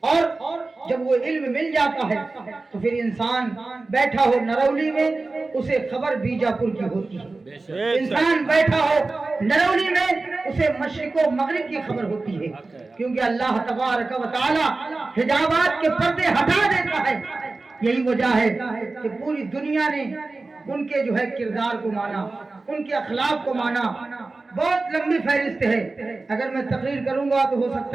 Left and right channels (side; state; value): left; quieter; 3.5 dB